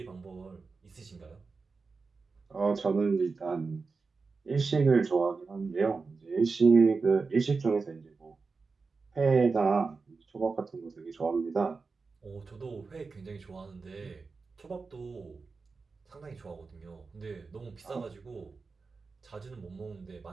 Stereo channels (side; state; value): left; quieter; 4.4 dB